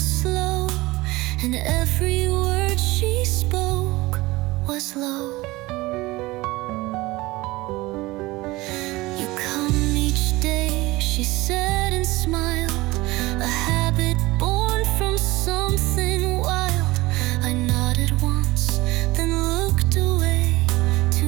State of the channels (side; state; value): left; quieter; 20.4 dB